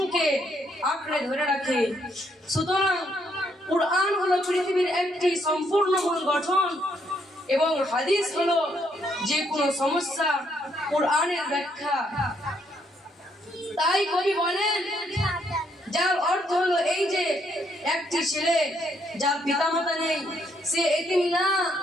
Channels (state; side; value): normal; both; correlation 0.73